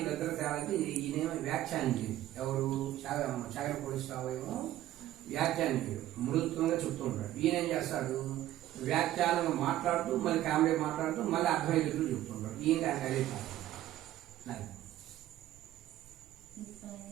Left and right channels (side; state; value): left; quieter; 13.8 dB